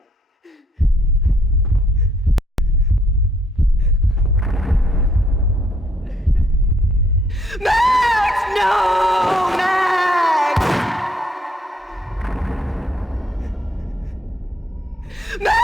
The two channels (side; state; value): both; normal; correlation 0.69